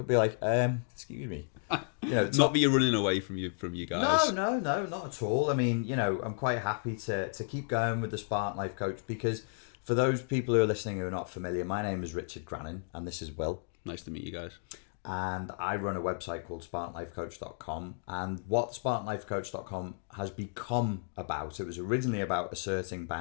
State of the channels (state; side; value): silent; right; digital silence